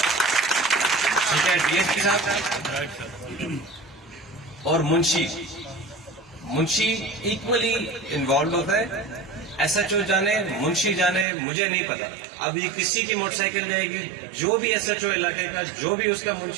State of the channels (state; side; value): drops out; left; at 11.2 s